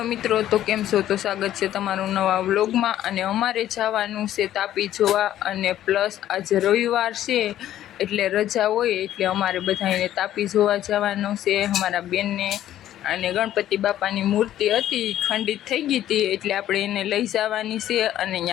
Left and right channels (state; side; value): quieter; right; 12.3 dB